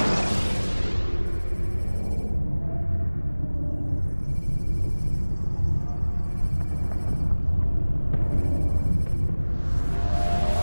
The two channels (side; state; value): both; inverted; correlation -1.00